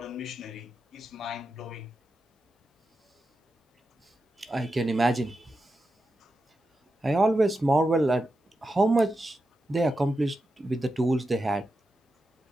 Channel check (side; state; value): both; normal; correlation 0.89